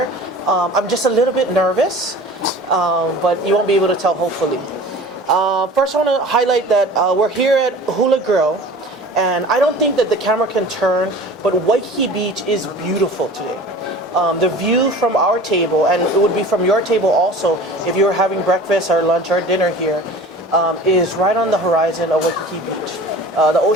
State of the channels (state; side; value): normal; both; correlation 0.41